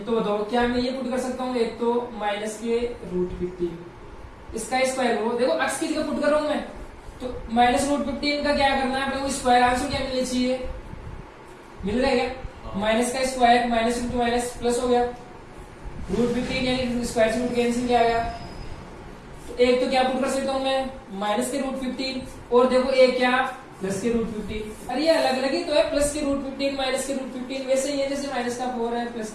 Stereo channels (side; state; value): both; identical; correlation 1.00